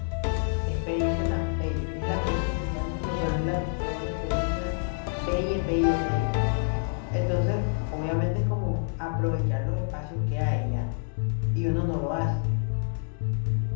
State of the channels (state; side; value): silent; right; digital silence